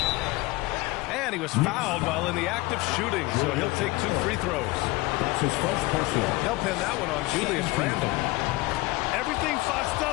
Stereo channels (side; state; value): right; quieter; 21.3 dB